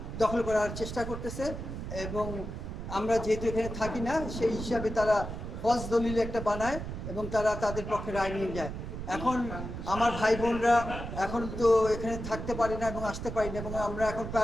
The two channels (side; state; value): right; noise; rumble, 7 dB below the sound